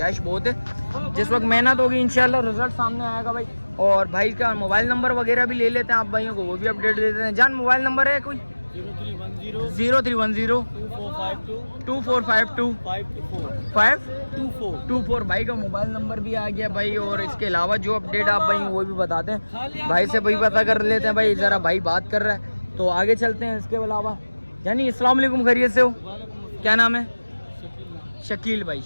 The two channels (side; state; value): both; inverted; correlation -1.00